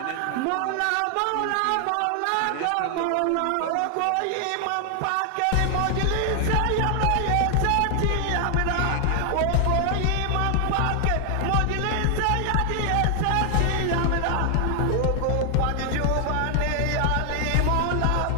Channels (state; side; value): different; both; correlation 0.00